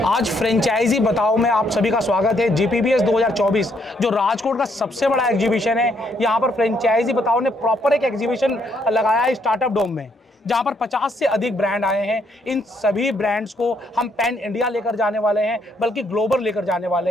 आज फ्रेंचाइजी बताओ में आप सभी का स्वागत है। GPBS 2024 जो राजकोट का सबसे बड़ा एग्जीबिशन है, यहाँ पर फ्रेंचाइजी बताओ ने प्रॉपर एक एग्जीबिशन लगाया है स्टार्टअप डोम में, जहाँ पर 50 से अधिक ब्रांड आए हैं। इन सभी ब्रांड्स को हम पैन इंडिया लेकर जाने वाले हैं, बल्कि ग्लोबल लेकर जाने वाले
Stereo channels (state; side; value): normal; both; correlation 0.72